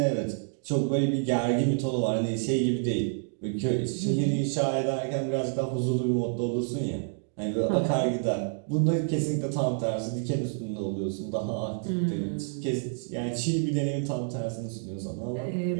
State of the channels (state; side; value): silent; left; digital silence